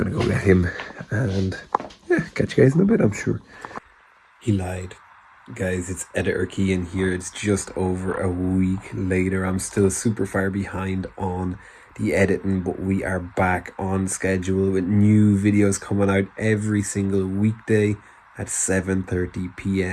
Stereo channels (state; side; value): identical; both; correlation 1.00